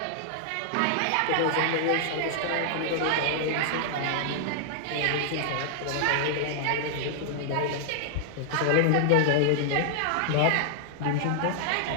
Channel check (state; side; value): different; both; correlation -0.01